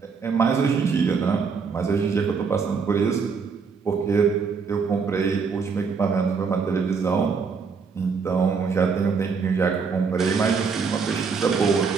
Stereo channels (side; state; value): left; quieter; 5.4 dB